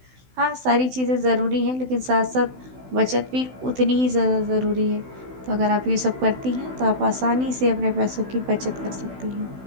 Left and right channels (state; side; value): late; left; 16 ms